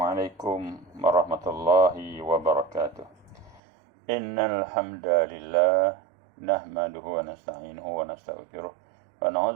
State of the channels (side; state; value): left; drops out; at 3.6 s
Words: warahmatullahi wabarakatuh. Innal hamdalillah nahmaduhu wa nasta'inuhu wa nastaghfiruh wa